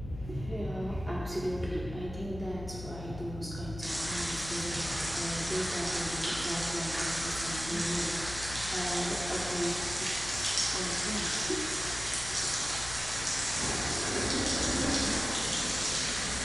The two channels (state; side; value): noise; left; hum, 11 dB below the sound